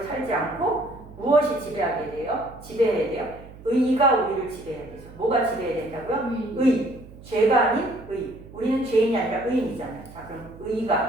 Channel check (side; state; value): right; noise; hum, 19 dB below the sound